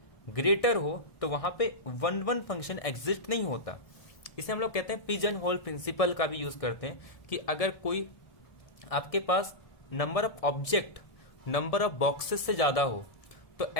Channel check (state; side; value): late; right; 1.6 ms